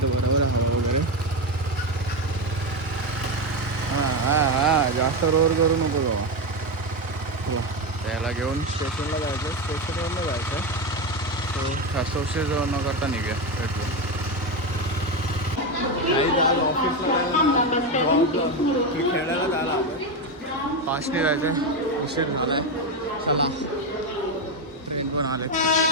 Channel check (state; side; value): normal; both; correlation 0.12